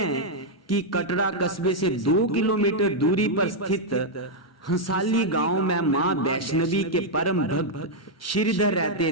कि कटरा कस्बे से 2 किलोमीटर दूरी पर स्थित हंसाली गांव में माँ वैष्णवी के परम भक्त श्रीधर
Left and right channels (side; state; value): both; normal; correlation -0.03